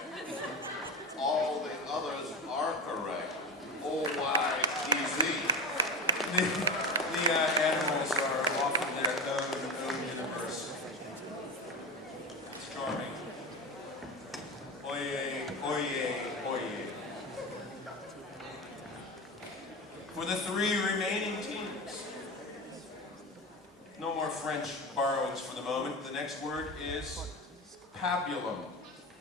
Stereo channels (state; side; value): normal; both; correlation 0.22